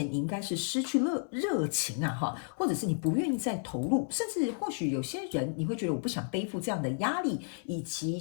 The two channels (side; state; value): right; silent; 56 dB below the other